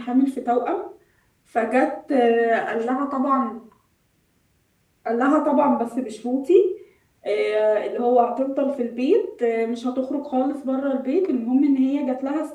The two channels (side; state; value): both; identical; correlation 1.00